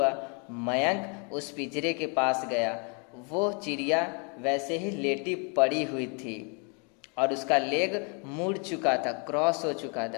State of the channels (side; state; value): right; quieter; 35.8 dB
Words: मयंक उस पिंजरे के पास गया. वो चिड़िया वैसे ही लेटी पड़ी हुई थी और उसका लेग मुड़ चुका था, क्रॉस हो चुका